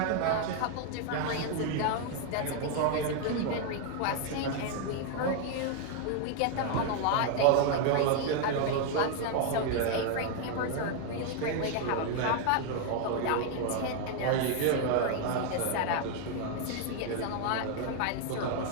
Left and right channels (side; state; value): both; different; correlation 0.00